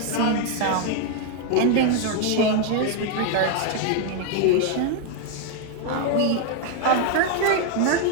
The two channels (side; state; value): both; different; correlation 0.01